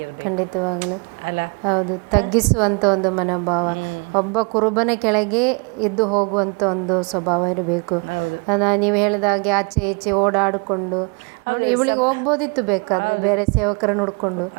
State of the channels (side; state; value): left; quieter; 33.9 dB